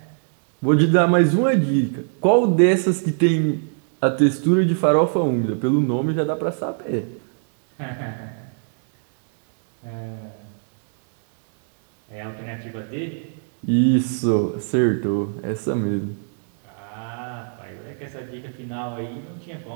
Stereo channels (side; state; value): left; silent; digital silence